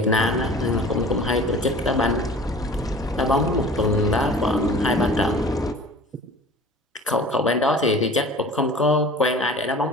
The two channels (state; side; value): normal; both; correlation 0.43